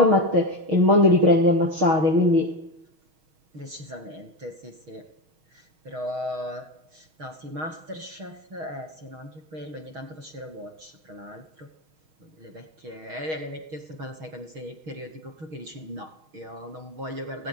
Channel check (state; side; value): late; left; 6.4 ms